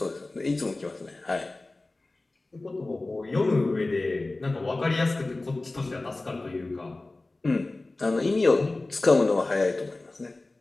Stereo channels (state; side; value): quieter; right; 3.1 dB